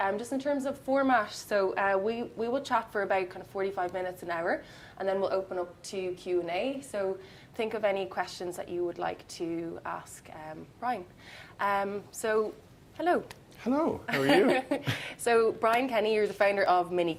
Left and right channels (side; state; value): both; identical; correlation 1.00